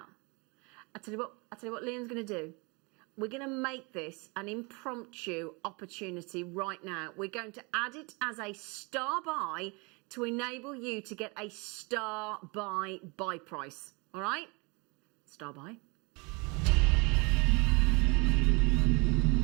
I tell you what Liam's going to do. We're going to make this an impromptu opportunity right now. We're going to add it as a star buy to enable you to get a star buy price. All right? Star buy.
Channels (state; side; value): quieter; left; 29.4 dB